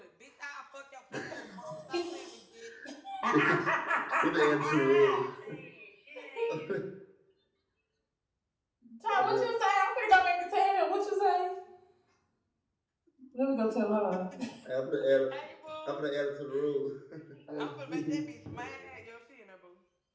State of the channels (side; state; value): both; identical; correlation 1.00